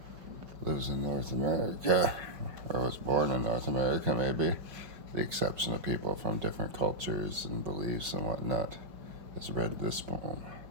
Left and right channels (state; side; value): late; left; 5.3 ms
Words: lives in North America, or was born in North America maybe, the exception of people from different cultures and beliefs and whatnot, has read this poem.